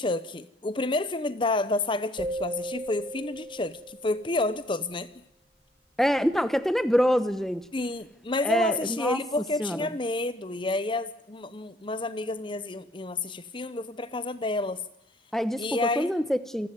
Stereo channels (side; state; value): both; normal; correlation 0.63